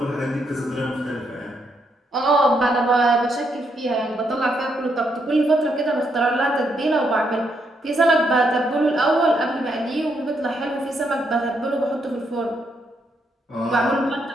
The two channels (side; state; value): both; normal; correlation 0.77